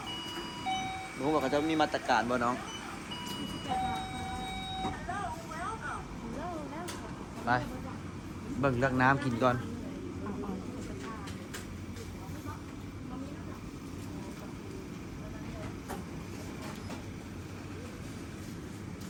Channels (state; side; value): identical; both; correlation 1.00